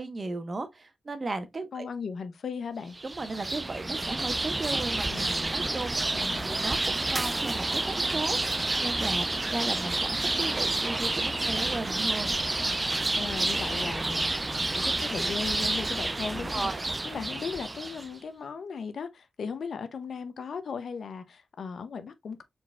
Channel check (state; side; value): normal; both; correlation 0.96